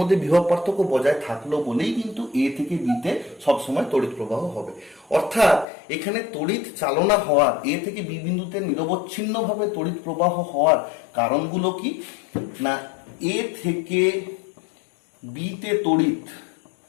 বিভব পার্থক্য বজায় থাকলো বলেই কিন্তু এ থেকে বিতে সবসময় তড়িৎ প্রবাহ হবে। অর্থাৎ এখানে তড়িৎ চালনা হওয়ার, এ থেকে বি বিন্দুতে নিরবচ্ছিন্নভাবে তড়িৎ প্রবাহ হওয়ার কারণগুলো কি না, এ থেকে বিতে তড়িৎ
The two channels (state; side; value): drops out; right; at 5.7 s